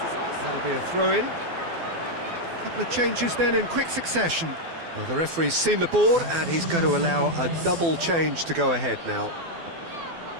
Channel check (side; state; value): left; late; 12 ms